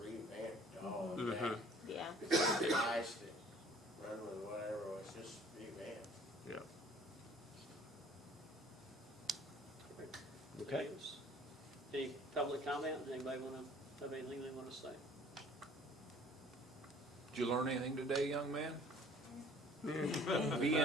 revamped all of Mhm. that. Yeah. The guys that run with whatever was just revamped. Yeah. Okay. Any public comment? Anybody have anything they want to say? Did you learn anything today, young man? Be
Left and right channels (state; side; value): normal; both; correlation 0.53